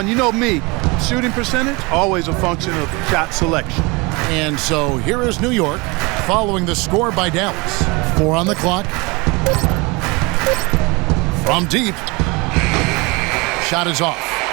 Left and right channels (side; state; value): left; quieter; 26.4 dB